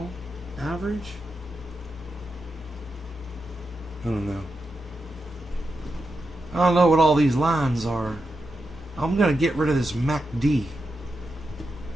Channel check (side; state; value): both; normal; correlation 0.87